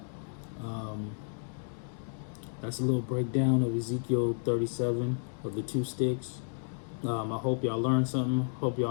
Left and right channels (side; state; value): right; silent; digital silence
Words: That's a little breakdown of Ezekiel 37 of the two sticks. I hope y'all learned something. Hope